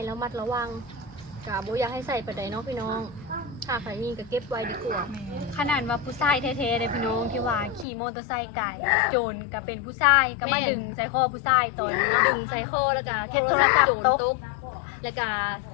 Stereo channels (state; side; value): drops out; right; at 7.9 s